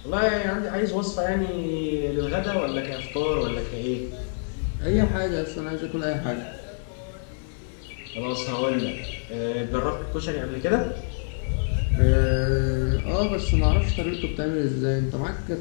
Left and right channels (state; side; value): silent; right; digital silence